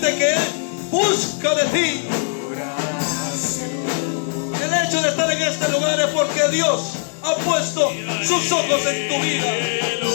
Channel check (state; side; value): silent; right; 65 dB below the other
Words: que Él busca de ti. El hecho de estar en este lugar es porque Dios ha puesto sus ojos en tu vida.